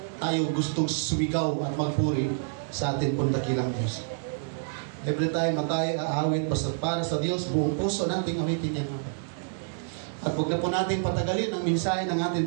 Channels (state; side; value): silent; left; digital silence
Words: tayo gustong sumigaw at magpuri sa atin pong dakilang Diyos. Every time na tayo aawit para sa Diyos, buong puso nating awitin yan. At huwag na po natin patagalin ang mensahe ng